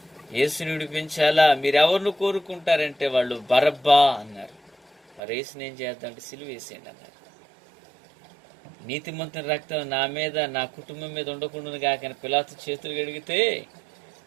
యేసుని విడిపించాలా, మీరెవరిని కోరుకుంటారంటే వాళ్ళు బరబ్బా అన్నారు. మరి యేసుని ఏం చేద్దామంటే సిలువ వేసేయండి అన్నారు. నీతిమంతుని రక్తం నా మీద నా కుటుంబం మీద ఉండకుండా కాక పిలాతు చేతులు గడిగితే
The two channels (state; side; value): drops out; left; at 5.2 s